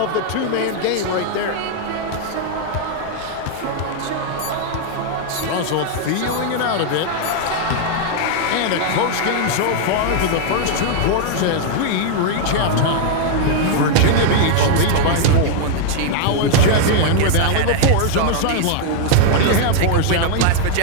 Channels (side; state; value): both; different; correlation 0.00